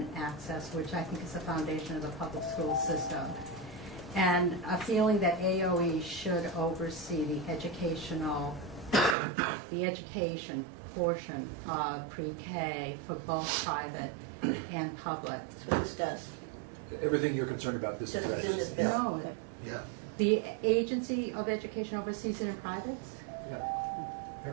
access, which I think is the foundation of the public school system. And a feeling that AOE should oversee the education portion of pre-K for both private and public. That's what this does. Everything you're concerned about, this Just in this addresses. bill. No, Yeah. the Agency of Education oversees it in privates?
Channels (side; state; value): left; drops out; at 9.2 s